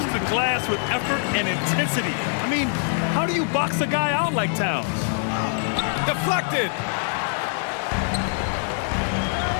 the glass with effort and intensity. I mean, how do you box a guy out like Towns? Deflected.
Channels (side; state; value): right; silent; 61 dB below the other